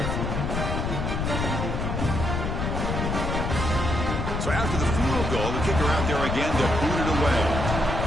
So after the field goal, the kicker out there again to boot it away.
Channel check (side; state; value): left; noise; rumble, 1 dB below the sound